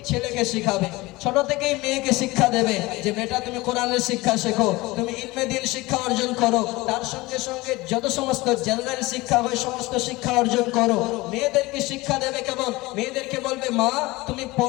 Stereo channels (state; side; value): quieter; right; 21.2 dB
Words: ছেলেকে শিখাবে, ছোট থেকেই মেয়েকে শিক্ষা দেবে যে বেটা তুমি কোরআনের শিক্ষা শেখো, তুমি ইলমে দ্বীন শিক্ষা অর্জন করো, তার সঙ্গে সঙ্গে যত সমস্ত জেনারেল শিক্ষা হয় সমস্ত শিক্ষা অর্জন করো। মেয়েদেরকে শিক্ষা দেবে কেমন? মেয়েদেরকে বলবে মা তুমি